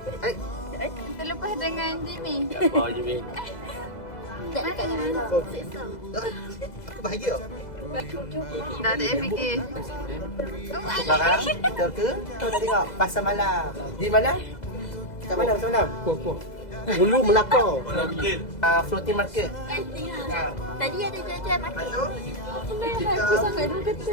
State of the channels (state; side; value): late; right; 2.0 ms